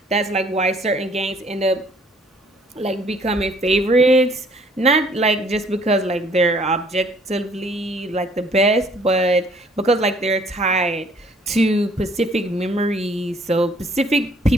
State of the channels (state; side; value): normal; both; correlation 0.59